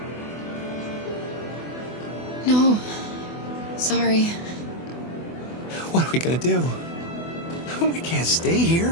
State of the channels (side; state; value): right; late; 24 ms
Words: No. Sorry. What are we gonna do? We can't stay here.